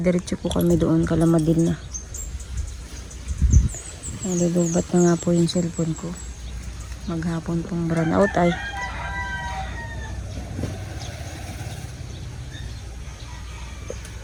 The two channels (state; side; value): identical; both; correlation 1.00